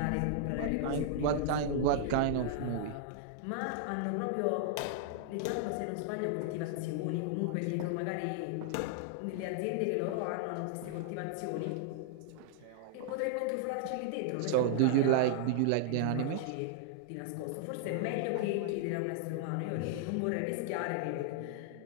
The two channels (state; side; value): different; both; correlation -0.01